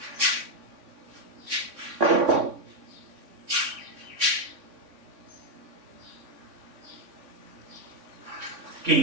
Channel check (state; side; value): late; left; 3.6 ms